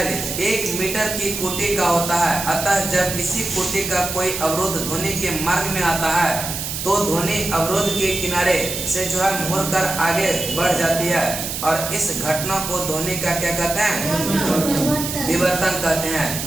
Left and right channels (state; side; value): noise; right; hiss, 5 dB below the sound